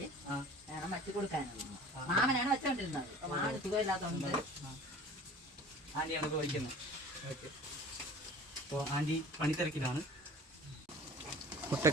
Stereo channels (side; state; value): both; normal; correlation 0.43